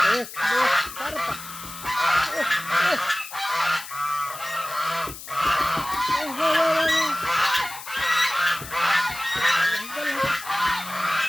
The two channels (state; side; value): noise; left; hiss, 13 dB below the sound